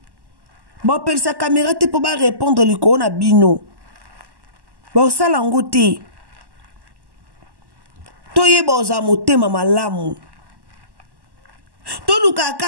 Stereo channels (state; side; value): late; left; 1.1 ms